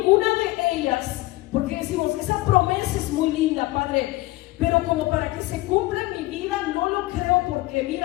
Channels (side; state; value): right; quieter; 19.2 dB